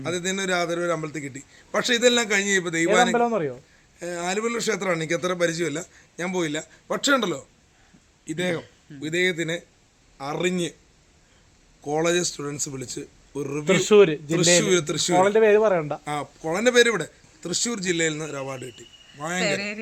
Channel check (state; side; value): identical; both; correlation 1.00